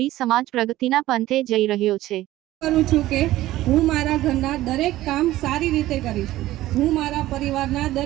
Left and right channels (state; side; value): quieter; left; 15.6 dB